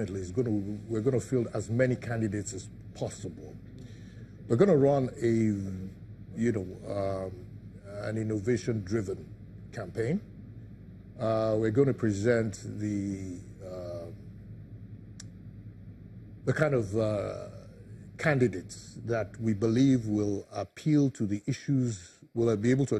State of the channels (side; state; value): both; identical; correlation 1.00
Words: is we're going to field as many candidates as possible. We're going to run an innovation-driven campaign. We're going to present the kind of candidates that we believe will appeal to the issues, will be able to